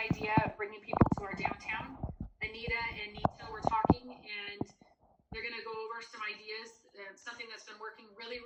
of bringing people to our downtown. Anita and Nita were talking, and they're going to go over some ideas, something that's been working really,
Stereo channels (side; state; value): both; identical; correlation 1.00